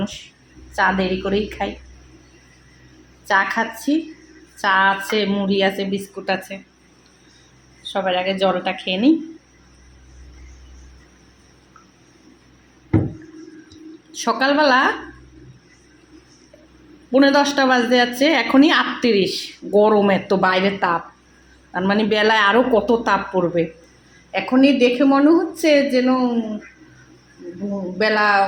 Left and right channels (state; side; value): identical; both; correlation 1.00